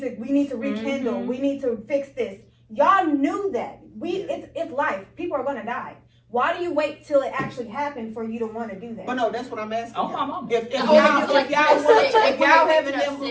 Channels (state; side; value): identical; both; correlation 1.00